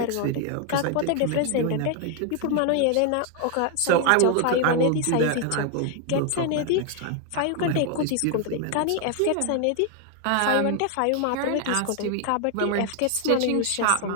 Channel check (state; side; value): different; both; correlation 0.00